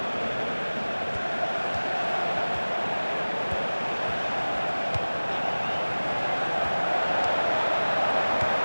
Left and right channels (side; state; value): both; inverted; correlation -1.00